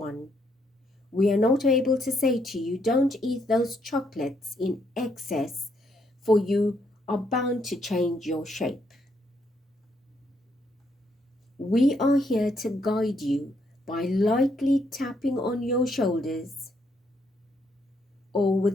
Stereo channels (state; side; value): normal; both; correlation 0.74